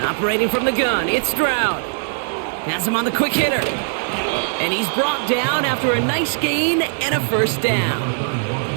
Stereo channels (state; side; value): silent; left; digital silence